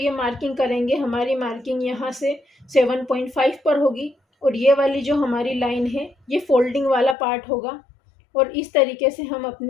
मार्किंग करेंगे, हमारी मार्किंग यहाँ से 7.5 पर होगी और ये वाली जो हमारी लाइन है ये फोल्डिंग वाला पार्ट होगा। और इस तरीके से हम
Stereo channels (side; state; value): right; drops out; at 7.2 s